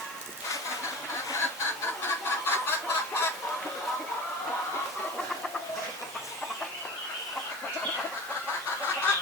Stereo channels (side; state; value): both; normal; correlation 0.35